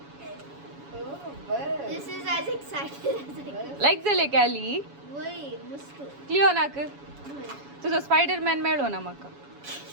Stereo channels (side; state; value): left; late; 7.1 ms